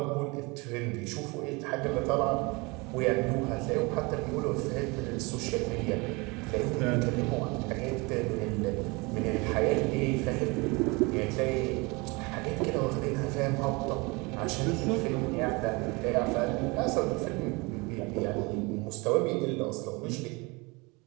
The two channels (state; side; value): quieter; left; 26.6 dB